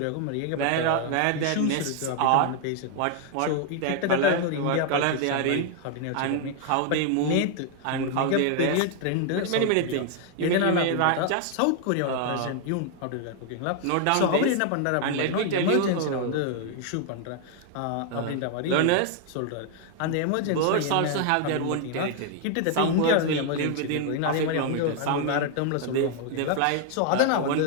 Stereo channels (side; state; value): both; different; correlation 0.00